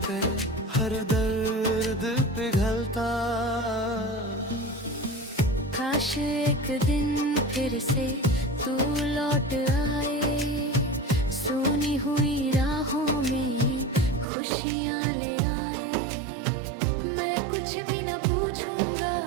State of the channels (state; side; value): drops out; left; at 14.2 s